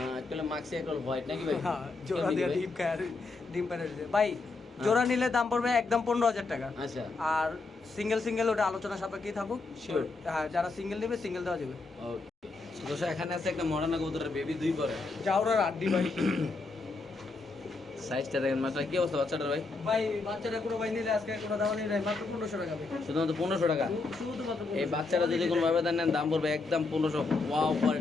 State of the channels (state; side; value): quieter; right; 3.8 dB